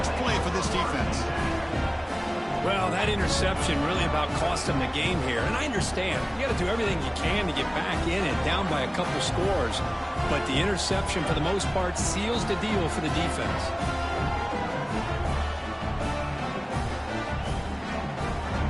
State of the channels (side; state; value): both; identical; correlation 1.00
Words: play for this defense. Well, that interception really about cost them the game here. And I understand. You got to do everything you can to get back in and down by a couple scores. But the interception, for the most part, seals the deal for the defense.